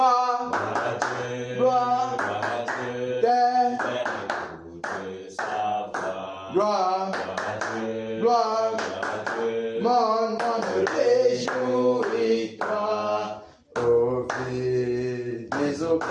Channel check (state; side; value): identical; both; correlation 1.00